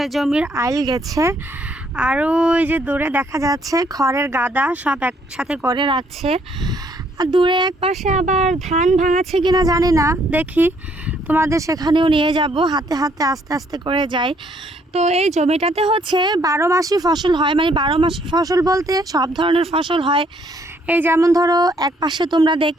জমির আইল গেছে। আরও ওই যে দূরে দেখা যাচ্ছে খড়ের গাদা সব একসাথে করে রাখছে। আর দূরে এক পাশে আবার ধান ভাঙাচ্ছে কিনা জানি না, দেখি তোমাদের সেখানেও নিয়ে যাব, হাতে হাতে আস্তে আস্তে করে যাই। তো এই জমিটাতে হচ্ছে 12 মাসই ফসল হয়, মানে 12 মাসি ফসল বলতে সব ধরনের ফসল হয়। এই যেমন ধরো এক পাশে তোমরা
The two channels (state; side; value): normal; both; correlation 0.67